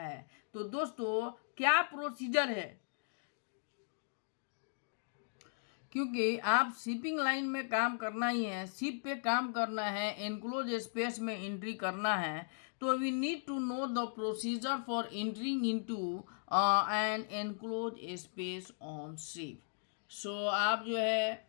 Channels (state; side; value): silent; right; digital silence